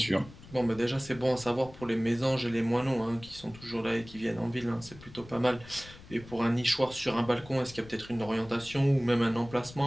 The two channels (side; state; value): left; noise; rumble, 19 dB below the sound